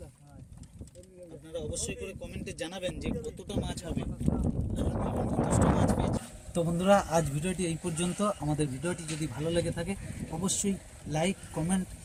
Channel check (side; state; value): both; identical; correlation 1.00